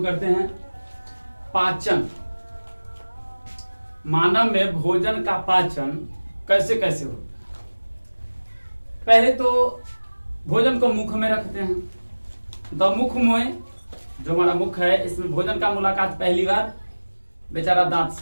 करते हैं। पाचन, मानव में भोजन का पाचन कैसे कैसे होता है। पहले तो भोजन को मुख में रखते हैं। तो मुख में जो हमारा मुख है, इसमें भोजन का मुलाकात पहली बार बेचारा दांत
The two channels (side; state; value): both; inverted; correlation -1.00